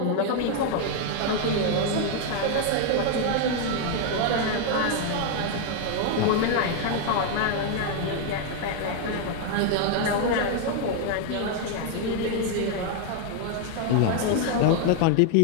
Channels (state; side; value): different; both; correlation 0.00